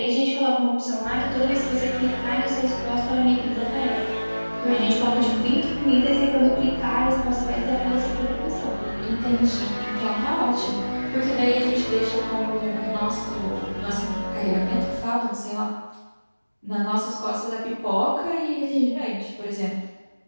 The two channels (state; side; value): inverted; both; correlation -1.00